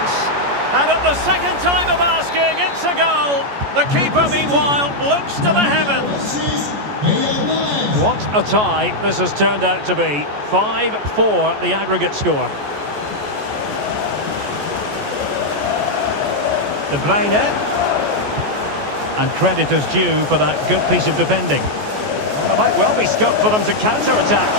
And at the second time of asking, it's a goal. The keeper, meanwhile, looks to the heavens. What a tie this has turned out to be. 5-4 the aggregate score. De Bruyne. And credit is due for that good piece of defending. Well, there might well be scope for them to counter-attack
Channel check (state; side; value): late; left; 14 ms